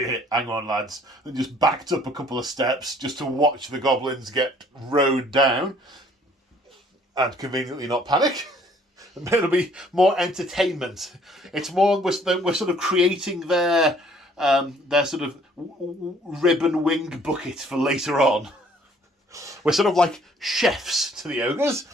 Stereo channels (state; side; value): normal; both; correlation 0.59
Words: on lads, and just backed up a couple of steps just to watch the Goblins get rowed down and conveniently not panic. It'll be more entertainment. It's more we're sort of creating their sort of ribbon wing bucket for later on. We're sort of like chefs to the ogres.